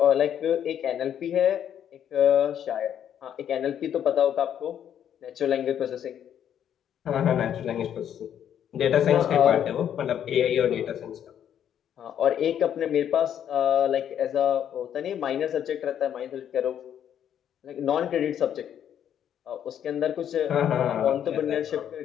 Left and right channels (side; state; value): right; quieter; 9.6 dB